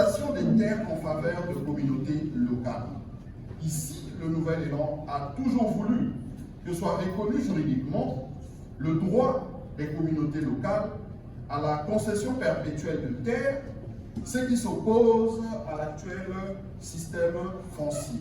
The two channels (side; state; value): both; identical; correlation 1.00